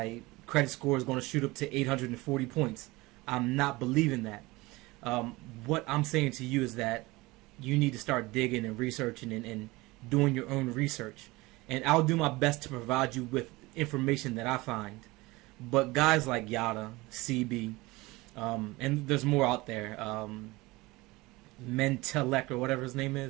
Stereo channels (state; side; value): quieter; left; 21.6 dB